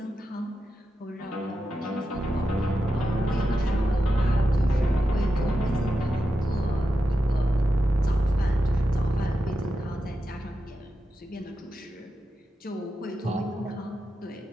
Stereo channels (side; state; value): both; normal; correlation 0.89